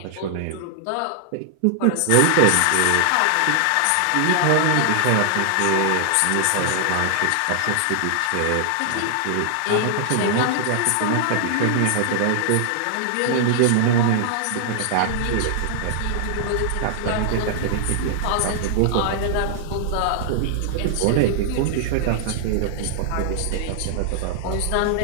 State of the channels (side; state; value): both; different; correlation -0.01